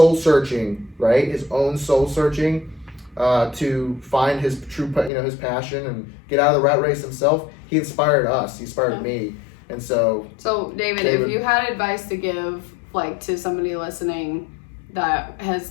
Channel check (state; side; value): drops out; right; at 5.1 s